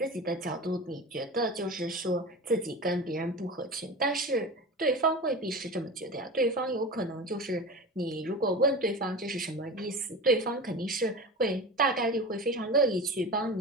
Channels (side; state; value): both; normal; correlation 0.30